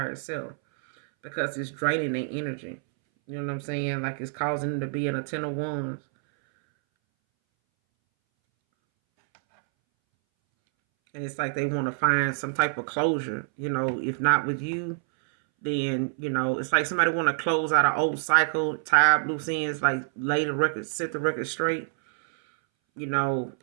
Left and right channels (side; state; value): left; silent; 60 dB below the other